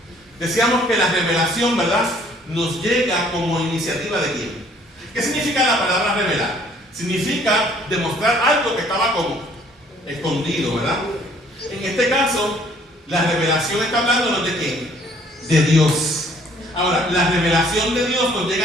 Decíamos que la revelación, ¿verdad?, nos llega como iniciativa de quién. ¿Qué significa la palabra revelar? Significa demostrar algo que estaba como escondido, ¿verdad? En este caso, la revelación está hablándonos de quién. De Dios. Ahora, la revelación de Dios nos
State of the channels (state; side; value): normal; both; correlation 0.60